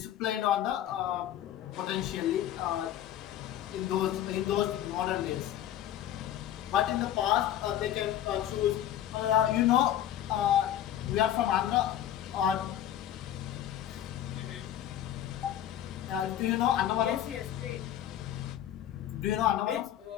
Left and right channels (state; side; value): quieter; right; 11.5 dB